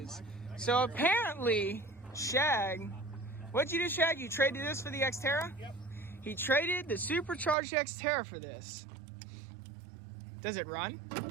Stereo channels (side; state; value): left; drops out; at 7.6 s